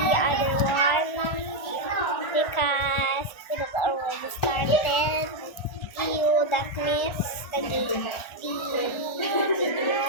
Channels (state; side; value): late; right; 1.4 ms